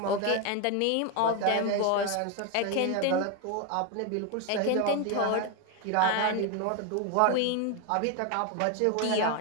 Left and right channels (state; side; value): different; both; correlation 0.01